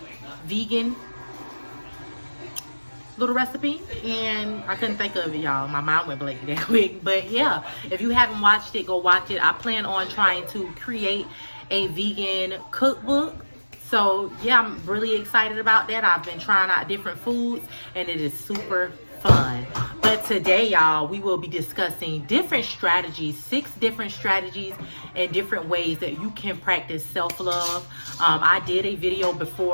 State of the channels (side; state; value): both; inverted; correlation -1.00